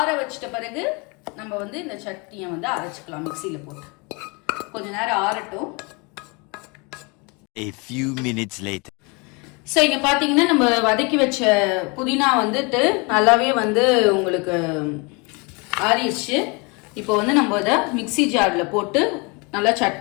வச்சிட்ட பிறகு நம்ம வந்து இந்த சட்னியை வந்து அரைச்சிக்கலாம். மிக்சியில் போட்டு கொஞ்ச நேரம் ஆறட்டும். A few minutes later. So இங்கே பார்த்தீங்கன்னா நம்ம வதக்கி வச்ச புதினா வந்துட்டு நல்லாவே வந்து உங்களுக்கு ஆறிடுச்சு. இப்போ வந்து நம்ம இதை மிக்சி ஜாரில் போட்டு நல்லா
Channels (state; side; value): quieter; right; 29.9 dB